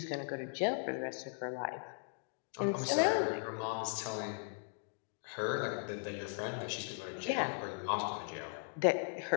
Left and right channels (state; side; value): silent; right; 52 dB below the other